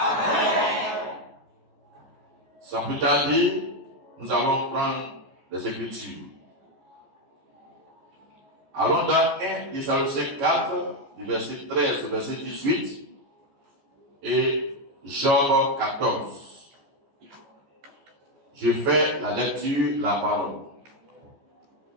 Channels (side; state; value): left; late; 14 ms